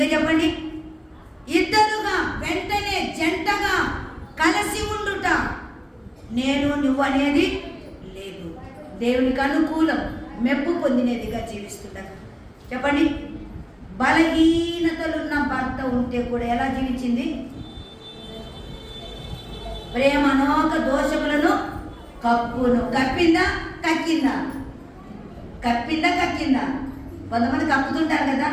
చెప్పండి, ఇద్దరుగా వెంటనే జంటగా కలిసి ఉండుట, నేను నువ్వు అనేది లేదు, దేవునికి అనుకూలం మెప్పు పొందినదిగా జీవిస్తుంటా. చెప్పండి, బలహీనతలున్న భర్త ఉంటే కూడా ఎలా జీవించింది? ప్రేమ అనేక దోషములను కప్పును. కప్పిందా కక్కిందా? కప్పిందా కక్కిందా? కొంతమంది కప్పుతుంటారు కదా,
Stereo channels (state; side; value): identical; both; correlation 1.00